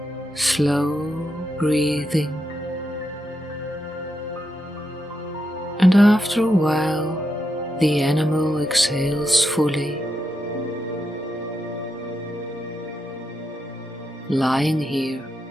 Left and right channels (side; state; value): both; normal; correlation 0.84